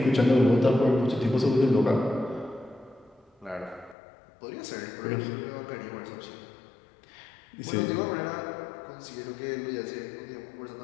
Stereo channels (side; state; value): right; drops out; at 4.0 s